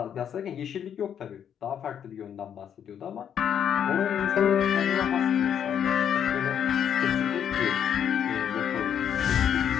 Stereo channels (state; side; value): quieter; right; 8.8 dB